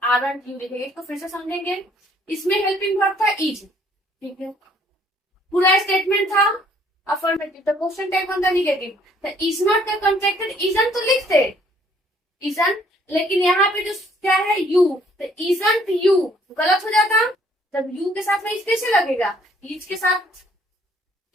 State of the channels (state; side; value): normal; both; correlation 0.62